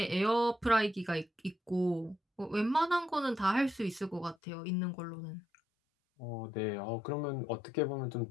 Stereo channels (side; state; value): right; drops out; at 4.4 s